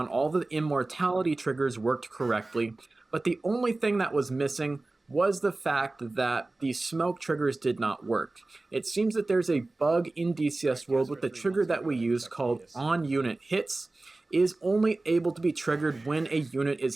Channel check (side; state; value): left; quieter; 3.1 dB